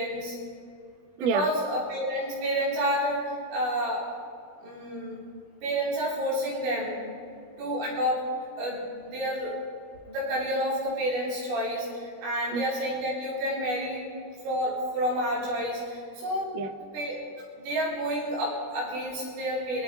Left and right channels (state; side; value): late; left; 20 ms